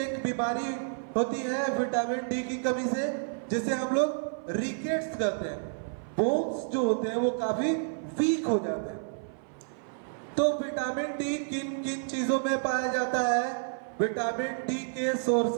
एक बीमारी होती है विटामिन डी की कमी से, जिसे हम लोग रिकेट्स कहते हैं। बोन्स जो होते हैं वो काफी वीक हो जाते हैं। तो विटामिन डी किन किन चीजों में पाया जाता है? विटामिन डी के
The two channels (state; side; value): silent; left; 56 dB below the other